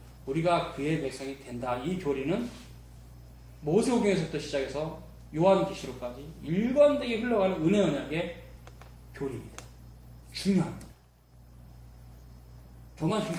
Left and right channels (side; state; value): both; identical; correlation 1.00